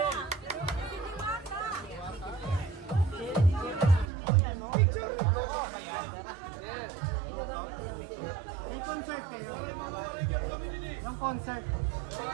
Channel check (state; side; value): drops out; left; at 4.0 s